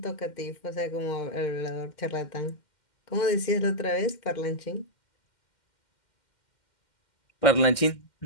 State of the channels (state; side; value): late; right; 2.1 ms